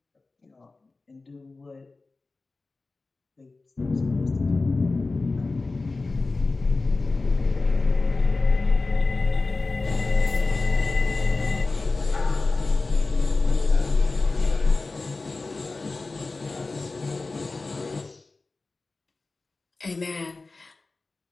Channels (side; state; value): right; quieter; 3.6 dB